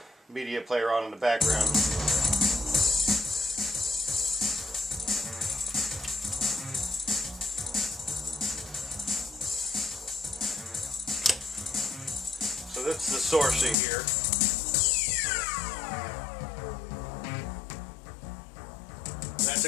media player on in the background. So that's the sourcing here. That's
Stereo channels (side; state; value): right; drops out; at 13.8 s